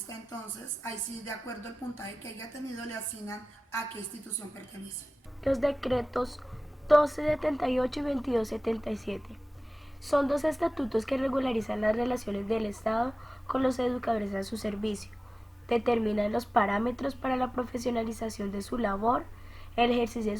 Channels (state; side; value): normal; both; correlation 0.97